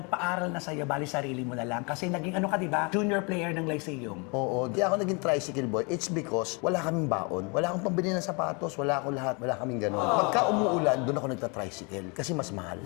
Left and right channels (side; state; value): right; quieter; 31.8 dB